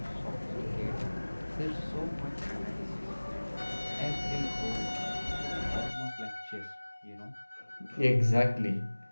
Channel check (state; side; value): inverted; both; correlation -1.00